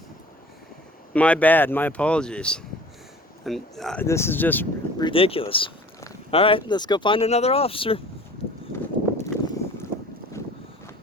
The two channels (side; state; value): both; normal; correlation 0.46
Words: My bad. My apologies. And this is just ridiculous. All right, let's go find another officer.